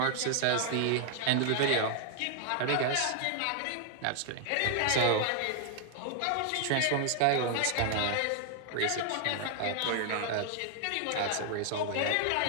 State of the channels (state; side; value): different; both; correlation 0.00